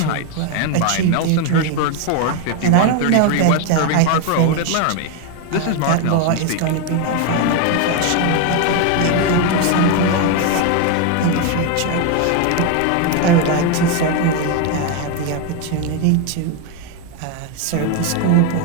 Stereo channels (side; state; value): both; different; correlation 0.01